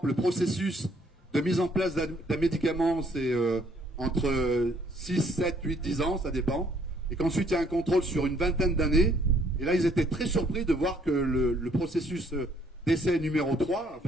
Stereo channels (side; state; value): both; normal; correlation 0.65